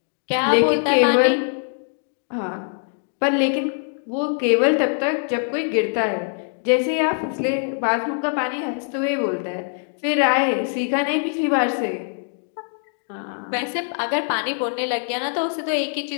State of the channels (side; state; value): right; silent; 64 dB below the other